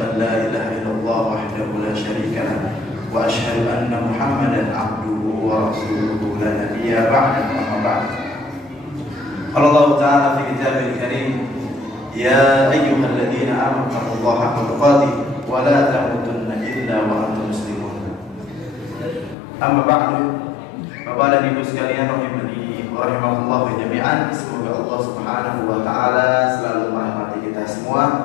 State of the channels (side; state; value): right; drops out; at 19.4 s